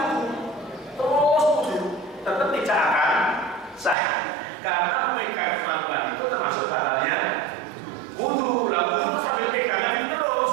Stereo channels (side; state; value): left; drops out; at 4.0 s